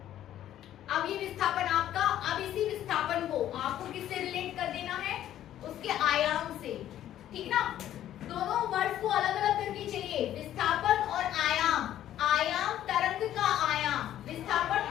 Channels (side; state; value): right; quieter; 12.0 dB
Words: अब ये विस्थापन आपका, अब इसी विस्थापन को आपको किससे रिलेट कर देना है? उसके आयाम से, ठीक ना। दोनों वर्ड्स को अलग अलग करके चलिए, विस्थापन और आयाम। आयाम तरंग का आयाम, विस्थापन